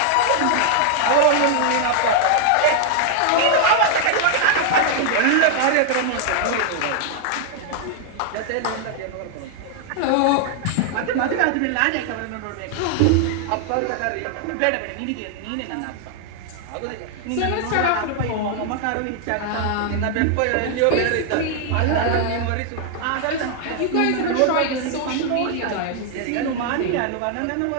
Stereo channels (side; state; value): both; different; correlation 0.00